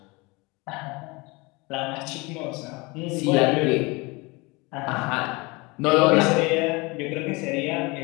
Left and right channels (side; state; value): right; quieter; 25.7 dB